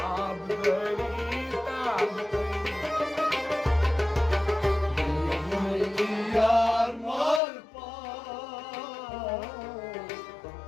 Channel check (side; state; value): right; drops out; at 7.4 s